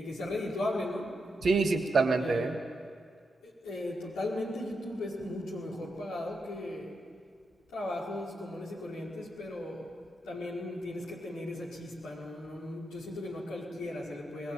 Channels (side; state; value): both; normal; correlation 0.84